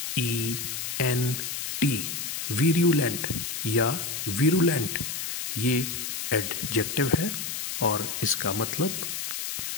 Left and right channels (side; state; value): left; noise; hiss, 4 dB below the sound